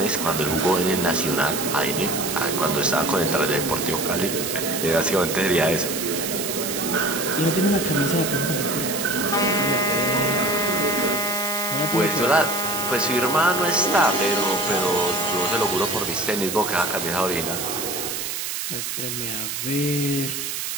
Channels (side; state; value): right; noise; hiss, 4 dB below the sound